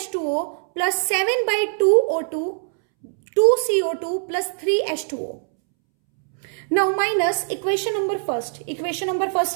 plus 7 by 2O2, 2CO2 plus 3H2O. Now minus equation number 1. Equation number 1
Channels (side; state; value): left; silent; 64 dB below the other